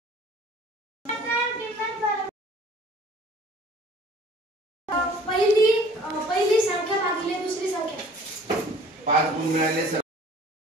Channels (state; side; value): normal; both; correlation 0.51